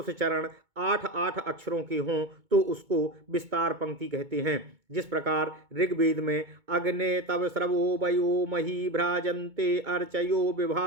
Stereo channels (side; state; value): left; late; 2.2 ms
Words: चरण 8 अक्षरों के हों तो उसको विस्तार पंक्ति कहते हैं। जिस प्रकार ऋग्वेद में अग्ने तव स्रवो वयो मही भ्राजन्ते अर्चयो